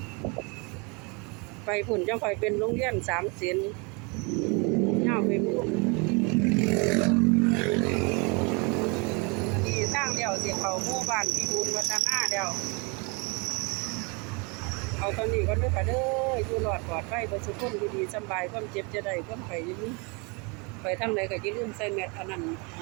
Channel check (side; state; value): left; quieter; 31.0 dB